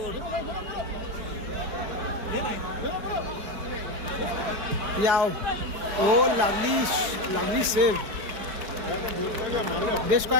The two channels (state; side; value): late; left; 4.8 ms